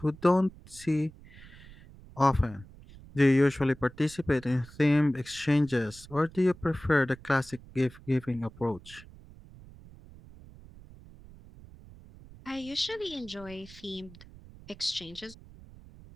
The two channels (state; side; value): noise; right; rumble, 20 dB below the sound